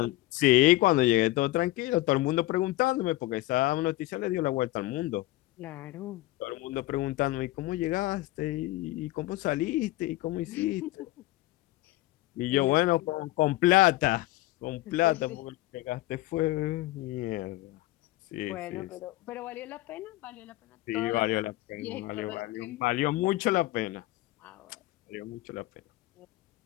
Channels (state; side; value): quieter; right; 17.8 dB